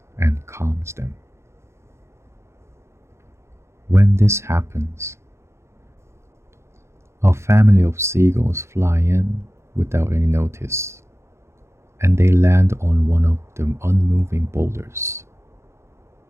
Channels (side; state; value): left; late; 0.13 ms